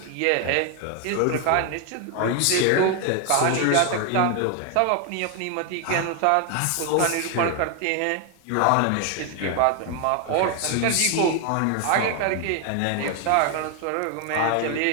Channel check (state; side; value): different; both; correlation 0.01